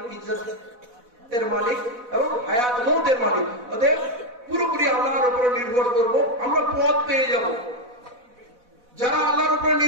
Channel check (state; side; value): late; left; 4.1 ms